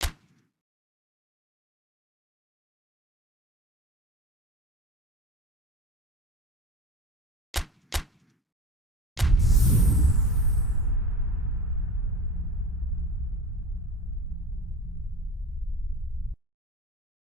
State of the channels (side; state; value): both; normal; correlation 0.35